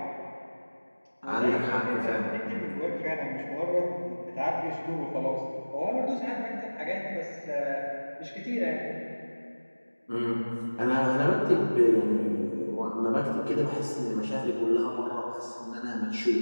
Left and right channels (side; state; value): both; inverted; correlation -1.00